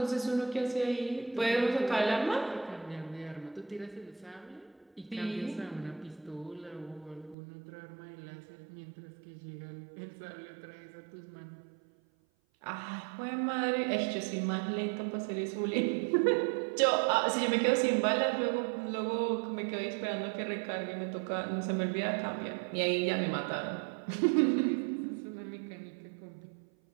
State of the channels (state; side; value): drops out; left; at 7.4 s